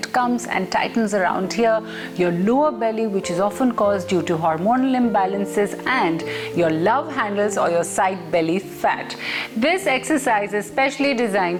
comes and tightens around here, your lower belly, which is often caused due to hormonal imbalances, and your love handles or your side belly fat. This exercise is specially designed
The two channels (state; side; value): identical; both; correlation 1.00